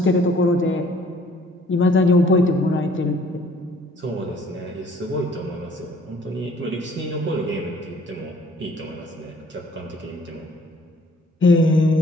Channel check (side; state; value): both; normal; correlation 0.58